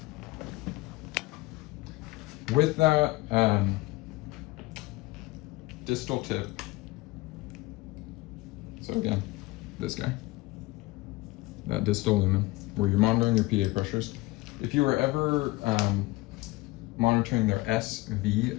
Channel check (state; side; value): quieter; right; 21.1 dB